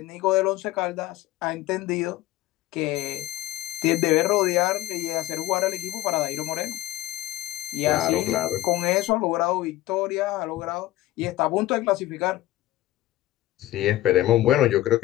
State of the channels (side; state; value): right; quieter; 15.6 dB